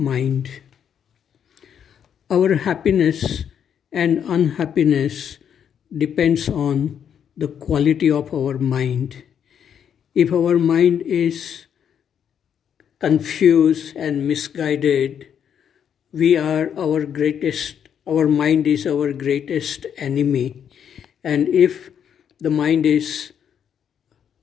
Our happiness and unhappiness depends on the quality of our mind. If our mind is confused and misguided, our mind is our greatest enemy. And if the mind is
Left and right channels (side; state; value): right; quieter; 8.4 dB